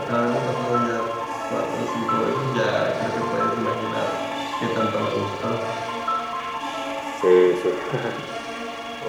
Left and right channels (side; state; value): both; identical; correlation 1.00